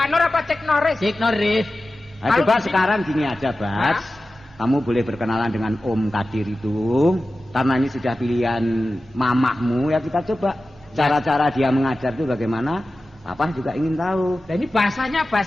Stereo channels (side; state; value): both; normal; correlation 0.94